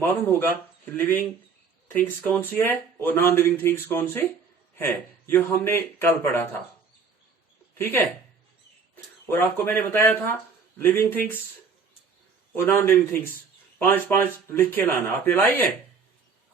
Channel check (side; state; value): left; quieter; 5.3 dB